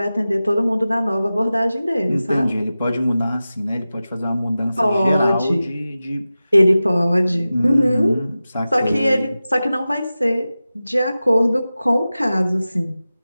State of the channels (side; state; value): both; inverted; correlation -0.95